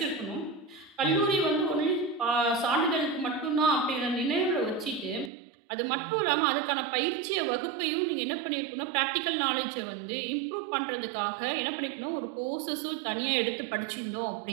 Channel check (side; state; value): left; drops out; at 5.3 s